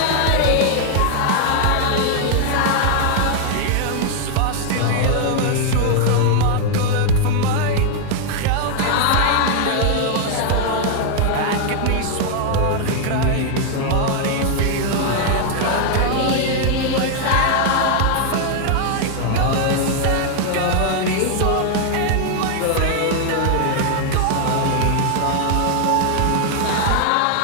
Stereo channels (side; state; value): both; different; correlation 0.00